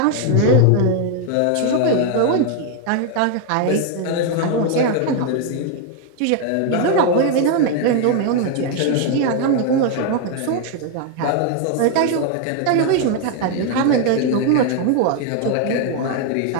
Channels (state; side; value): different; both; correlation 0.00